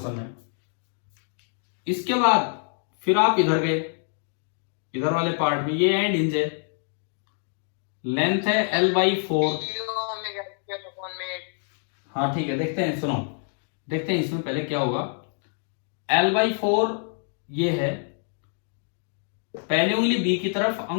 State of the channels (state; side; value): silent; right; digital silence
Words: में। इसके बाद फिर आप इधर गए, इधर वाले पार्ट में ये एंड हिंज है, लेंथ है L/4। हाँ ठीक है, देखते हैं, सुनो देखते हैं इसमें पहले क्या होगा। L/4 ये है, पहली उंगली बी की तरफ,